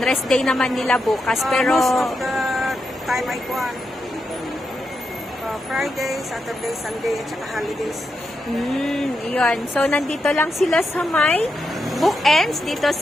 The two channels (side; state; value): both; normal; correlation 0.85